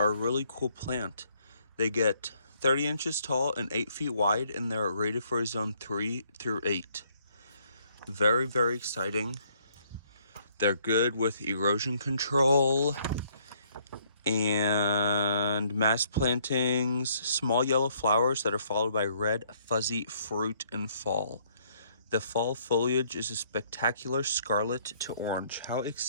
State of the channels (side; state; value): both; inverted; correlation -0.66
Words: a really cool plant. They get 30 inches tall and 8 feet wide, and they're rated for a zone 3 through 8. Very, very exciting. They're good with erosion control and mass plantings, small yellow flowers that are followed by red fuzzy fruit in fall. The fall foliage is a spectacular scarlet to orange. How